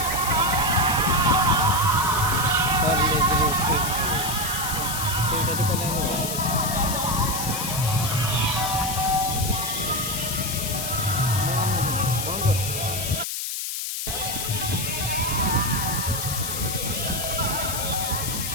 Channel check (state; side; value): noise; left; hiss, 3 dB below the sound